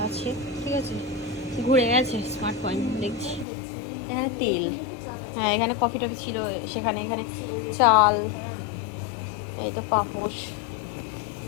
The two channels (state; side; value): drops out; right; at 3.5 s